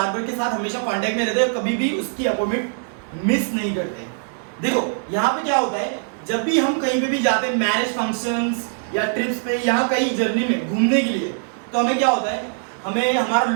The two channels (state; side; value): silent; left; digital silence